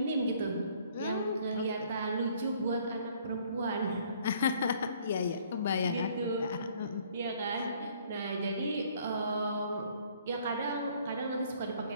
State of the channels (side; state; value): both; inverted; correlation -0.60